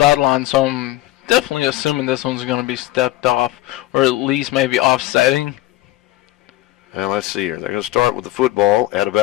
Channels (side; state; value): right; quieter; 16.4 dB